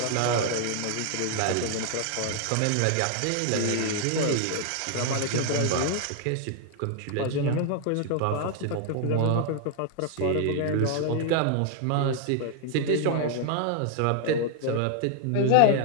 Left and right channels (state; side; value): different; both; correlation 0.00